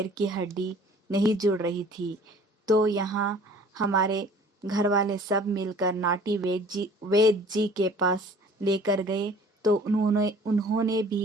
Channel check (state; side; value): normal; both; correlation 0.50